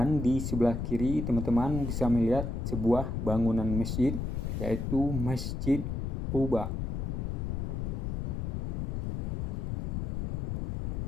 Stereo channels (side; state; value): left; noise; rumble, 2 dB below the sound